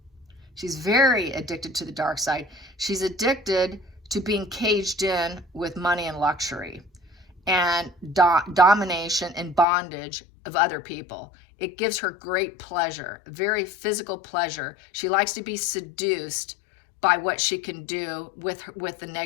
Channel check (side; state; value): right; drops out; at 9.7 s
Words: She's very addicted to the dark side. She's addicted to being caged in with money and luxury and domination and bondage of other people. It gives her great pleasure, very physical pleasure. She likes to be seduced by what she can do with the